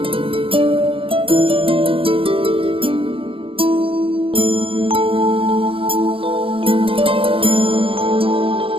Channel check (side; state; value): left; late; 0.26 ms